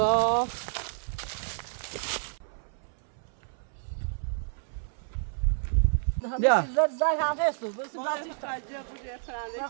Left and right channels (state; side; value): silent; left; 58 dB below the other